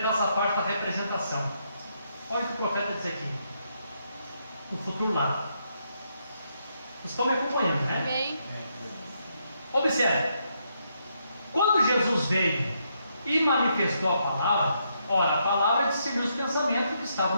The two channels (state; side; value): inverted; both; correlation -0.78